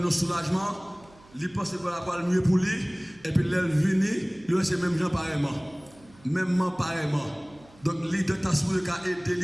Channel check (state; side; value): noise; right; hum, 26 dB below the sound